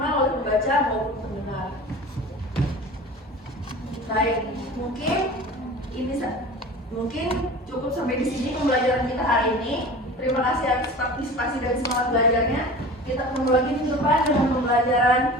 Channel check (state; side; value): normal; both; correlation 0.38